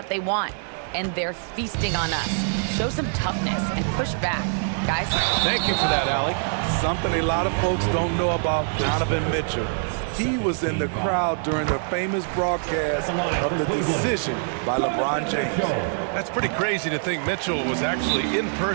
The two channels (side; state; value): left; silent; 62 dB below the other